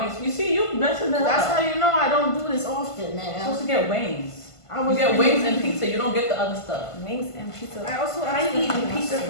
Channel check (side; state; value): right; late; 1.5 ms